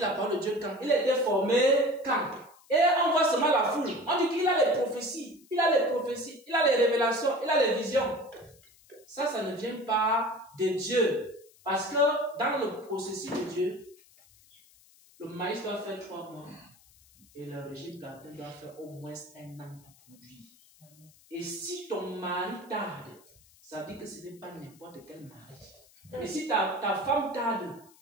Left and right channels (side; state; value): left; noise; hiss, 28 dB below the sound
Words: parole de Dieu quand? Il a été formé quand? Et on voit seulement la foule. On dit qu'il a les prophéties. Il a les prophéties. Il a les révélations. Il a les visions. Ça ne vient pas de Dieu. Parce que dans le processus de Dieu, le maïs doit faire 3 mois. Et le régime plantain doit faire au moins 1 an pour produire. Et si ton mari tarde, ça veut dire que ce n'est pas n'importe quel mari. Et si ta femme tarde,